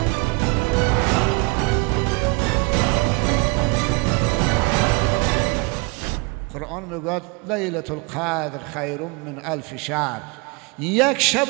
قرآن میگوید لیلة القدر خیر من الف شهر. یک شب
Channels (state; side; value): quieter; left; 28.4 dB